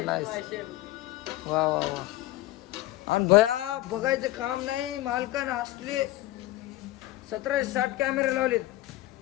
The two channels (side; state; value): right; quieter; 16.5 dB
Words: वा वा वा. आणि भया बघायचं काम नाही. मालकानं असले 1760 कॅमेरे लावलेत.